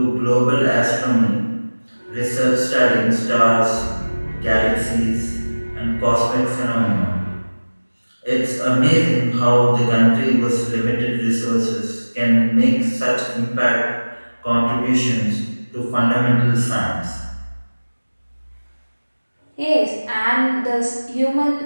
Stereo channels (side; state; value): both; inverted; correlation -1.00